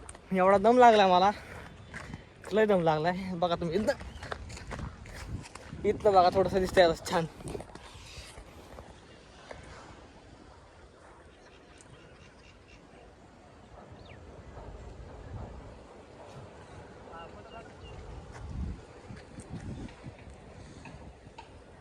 एवढा दम लागला मला, लय दम लागलाय. बघा तुम्ही इथं बघा थोडंसं दिसतंय छान.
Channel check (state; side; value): identical; both; correlation 1.00